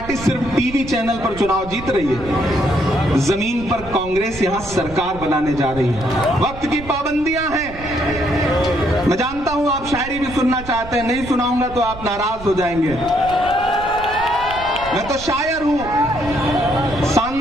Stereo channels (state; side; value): noise; right; rumble, 14 dB below the sound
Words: सिर्फ टीवी चैनल पर चुनाव जीत रही है, जमीन पर कांग्रेस यहां सरकार बनाने जा रही है। वक्त की पाबंदियां हैं। मैं जानता हूं आप शायरी भी सुनना चाहते हैं, नहीं सुनाऊंगा तो आप नाराज हो जाएंगे। मैं तो शायर हूं,